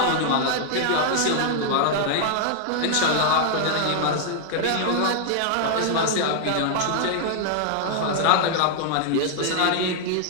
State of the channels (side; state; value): both; different; correlation 0.00